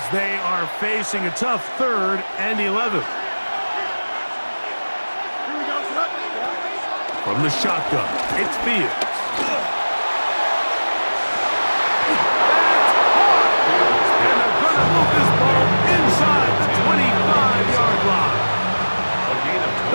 they are facing a tough 3rd and 11. From the shotgun, it's Fields.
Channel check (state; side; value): inverted; both; correlation -1.00